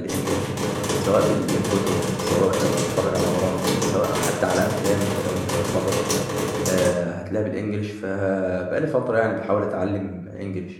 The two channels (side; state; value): both; identical; correlation 1.00